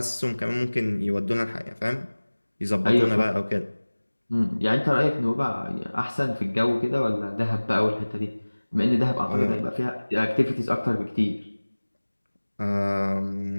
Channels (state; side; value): inverted; both; correlation -1.00